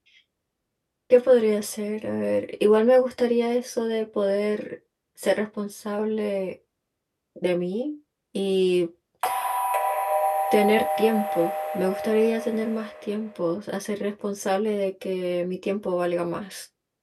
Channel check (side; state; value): both; identical; correlation 1.00